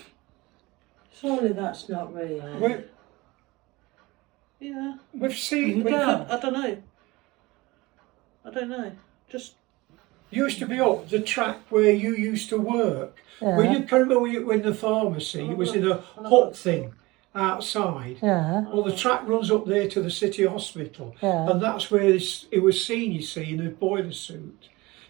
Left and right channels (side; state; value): left; quieter; 21.8 dB